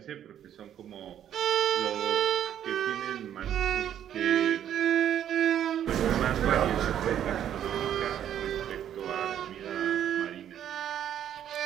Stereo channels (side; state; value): left; quieter; 10.3 dB